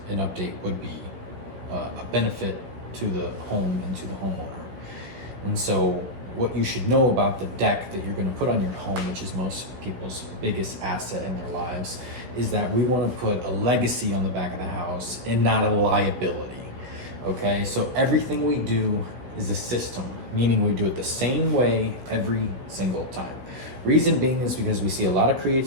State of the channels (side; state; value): left; late; 16 ms